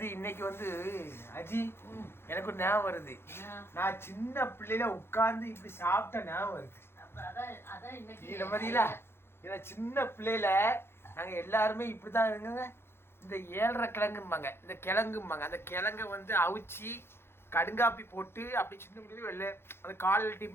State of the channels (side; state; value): right; late; 0.12 ms